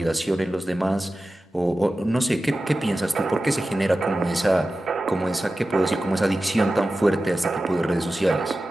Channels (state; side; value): normal; both; correlation 0.94